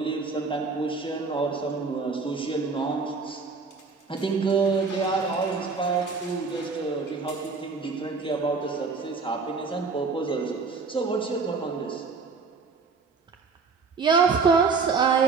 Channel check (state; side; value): quieter; left; 4.7 dB